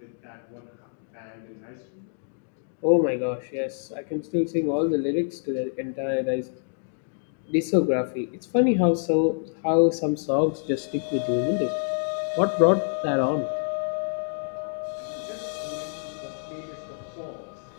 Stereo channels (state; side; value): silent; right; digital silence